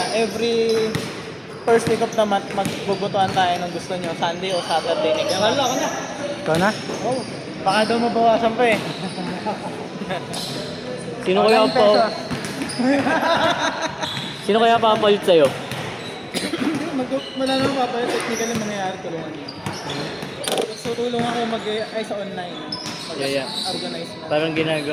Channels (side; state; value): both; identical; correlation 1.00